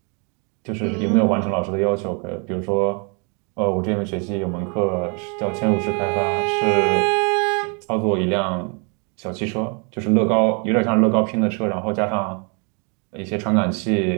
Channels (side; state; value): left; quieter; 35.9 dB